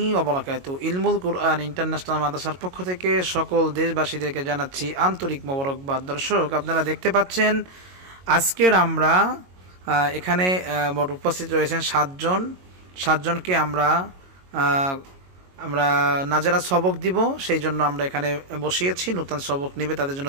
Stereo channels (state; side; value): late; left; 22 ms